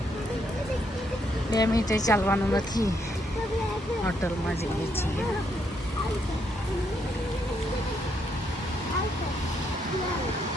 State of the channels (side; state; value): both; normal; correlation 0.75